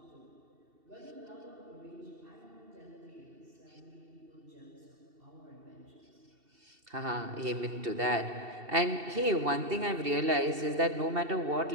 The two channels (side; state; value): left; late; 2.7 ms